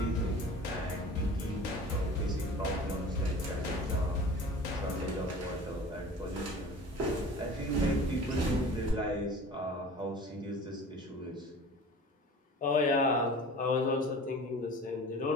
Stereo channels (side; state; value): both; normal; correlation 0.41